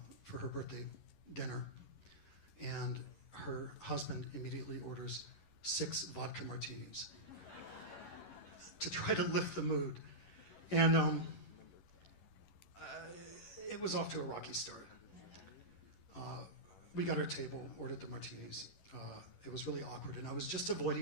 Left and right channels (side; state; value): right; late; 11 ms